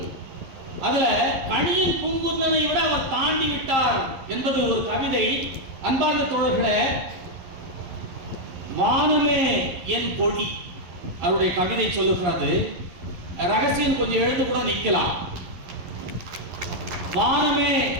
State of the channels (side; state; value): left; late; 11 ms